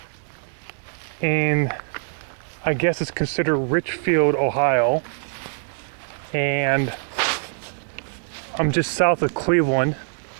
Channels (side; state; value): left; silent; digital silence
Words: in, I guess it's considered Richfield, Ohio. And I'm just south of Cleveland.